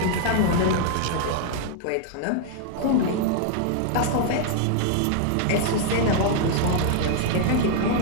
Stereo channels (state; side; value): different; both; correlation 0.00